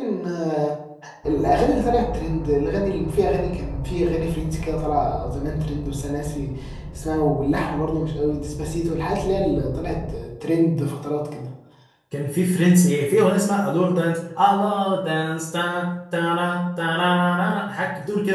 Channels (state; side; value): identical; both; correlation 1.00